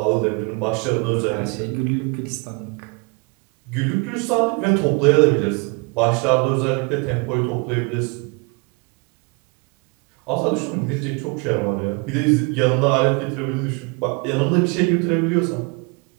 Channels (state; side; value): quieter; left; 31.0 dB